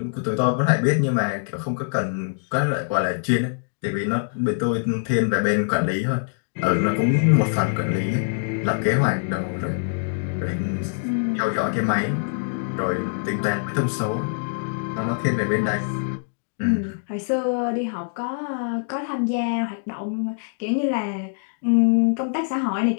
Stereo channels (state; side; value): silent; right; digital silence